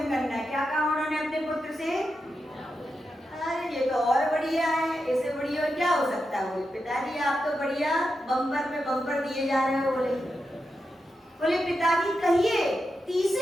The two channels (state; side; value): normal; both; correlation 0.88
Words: करना। क्या कहा उन्होंने अपने पुत्र से? अरे ये तो और बढ़िया है, इससे बढ़िया और क्या हो सकता है? बोले पिताजी आप तो बढ़िया बम्पर पे बम्पर दिए जा रहे हो। बोले पिताजी कहिए